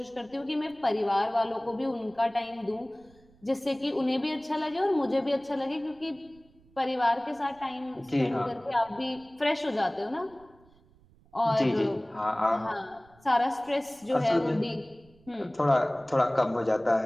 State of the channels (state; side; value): noise; right; rumble, 29 dB below the sound